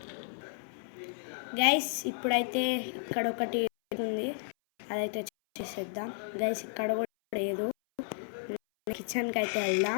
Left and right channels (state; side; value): silent; right; 56 dB below the other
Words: గైస్ ఇప్పుడైతే ఇక్కడ ఒకటి ఉంది, అదైతే చేసేద్దాం. గైస్ ఇక్కడ కూడా లేదు. కిచెన్కి అయితే